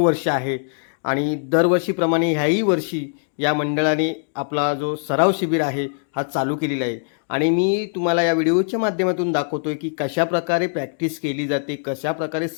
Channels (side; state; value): right; silent; 63 dB below the other